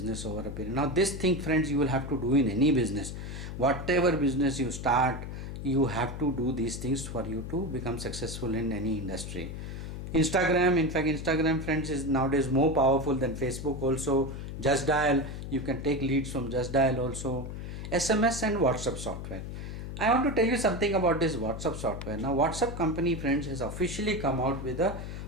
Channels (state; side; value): noise; left; hum, 7 dB below the sound